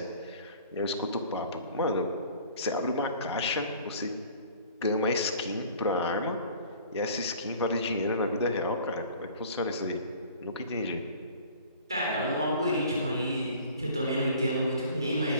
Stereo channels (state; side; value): inverted; both; correlation -0.48